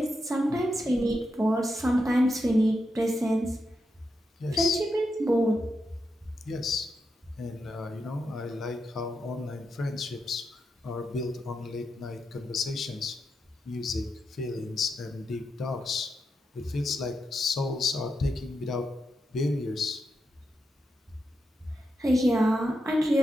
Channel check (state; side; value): normal; both; correlation 0.85